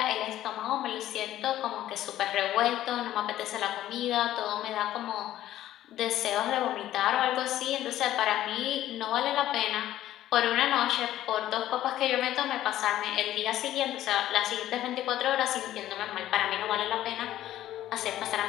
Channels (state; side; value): quieter; right; 13.2 dB